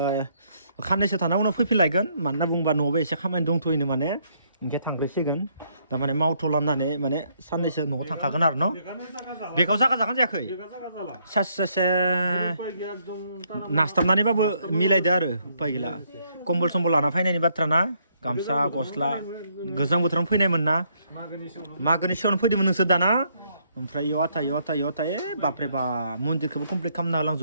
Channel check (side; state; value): both; inverted; correlation -0.71